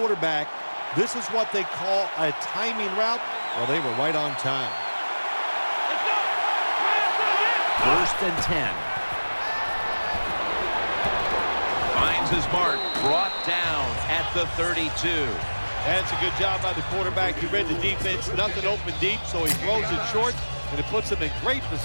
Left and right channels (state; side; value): inverted; both; correlation -1.00